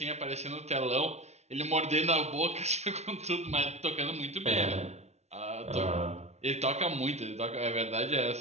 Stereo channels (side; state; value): left; late; 0.32 ms